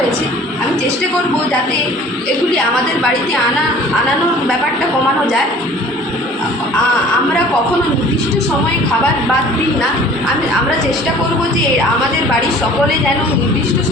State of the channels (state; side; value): normal; both; correlation 0.48